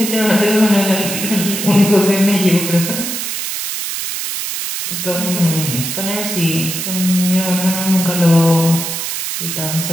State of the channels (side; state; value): right; noise; hiss, 4 dB below the sound